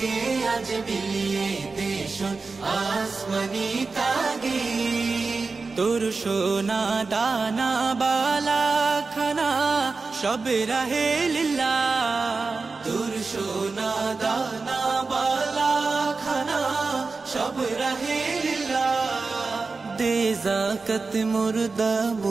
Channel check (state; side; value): quieter; left; 4.1 dB